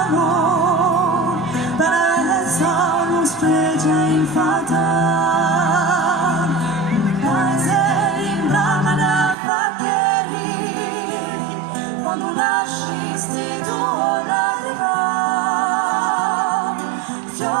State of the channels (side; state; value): left; drops out; at 9.3 s